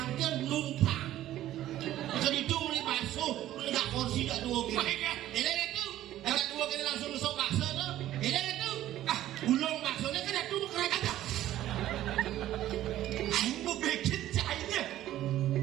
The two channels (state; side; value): quieter; left; 13.5 dB